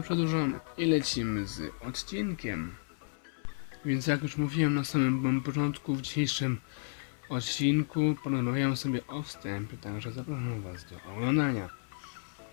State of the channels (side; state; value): right; silent; 56 dB below the other